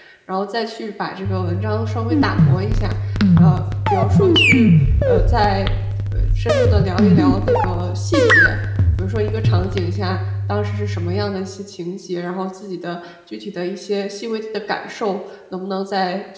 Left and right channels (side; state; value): both; identical; correlation 1.00